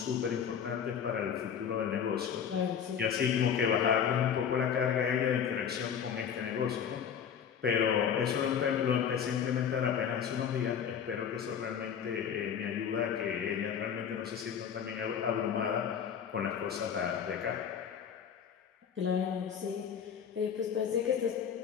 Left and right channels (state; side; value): quieter; right; 7.9 dB